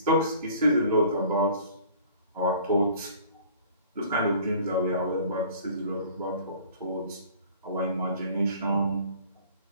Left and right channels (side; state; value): both; inverted; correlation -0.49